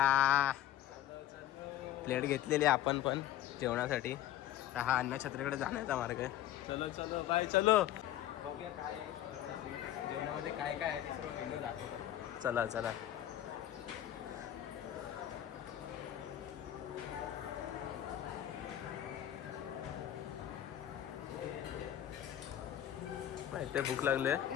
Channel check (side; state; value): right; quieter; 12.3 dB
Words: प्लेट घेतलेली आपण पण जेवणासाठी. तर हा अन्नछत्रीकडे जाण्याचा मार्ग आहे. चलो चलो बाय चलो. बघूया काय जेवणामध्ये काय काय आहे ते सर्व मेनू दाखवतो. चला चला. माहिती भूक लागले.